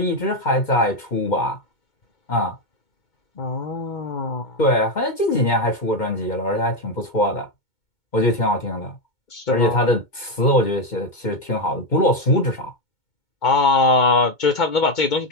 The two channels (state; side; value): late; right; 2.2 ms